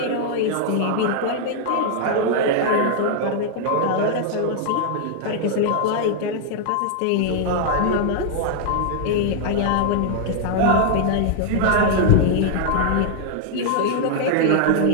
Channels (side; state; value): both; different; correlation 0.00